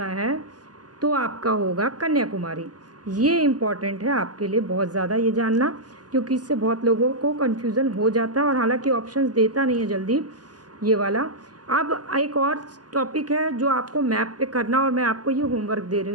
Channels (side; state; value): left; late; 0.69 ms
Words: है तो आपका होगा कन्याकुमारी। ये इम्पॉर्टेंट है आपके लिए बहुत ज़्यादा ये जानना, क्योंकि इससे बहुत लोगों को कन्फ्यूज़न हो जाता है और हालांकि ऑप्शंस देता नहीं है जल्दी ये वाला। अब एक और टॉपिक है जो आपको मैप पे करना, और मैं आपको ये होमवर्क दे